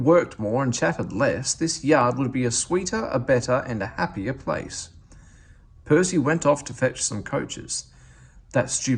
more and chatted less, this yard would be a sweeter, a better, and a happier place." Percy went off to fetch some coaches. "That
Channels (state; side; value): identical; both; correlation 1.00